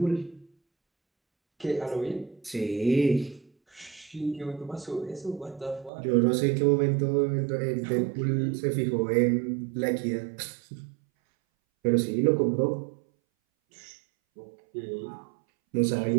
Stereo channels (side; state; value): left; drops out; at 5.9 s